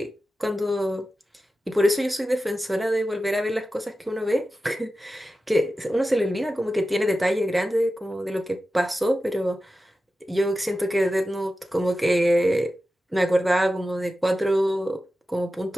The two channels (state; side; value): normal; both; correlation 0.93